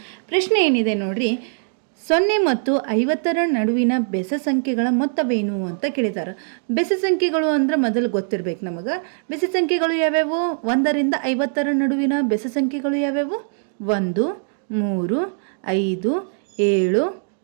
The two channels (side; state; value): left; silent; digital silence